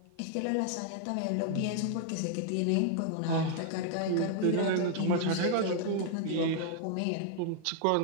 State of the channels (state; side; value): different; both; correlation 0.00